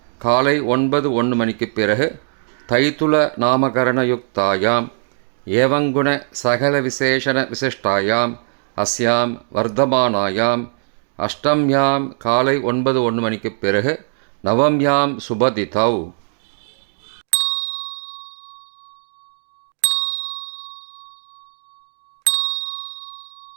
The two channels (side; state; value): left; silent; digital silence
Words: काले 9:01 मणिक्कु पिறகு தைத்துல நாமகரணயுக்தாயாம் ஏவங்குண சகல விசேஷண விசிஷ்டாயாம் அஸ்யாம் வர்த்தமானாயாம் அஷ்டம்யாம் காலை 9:01 மணிக்கு பிறகு நவம்யாம் சுபதிதௌ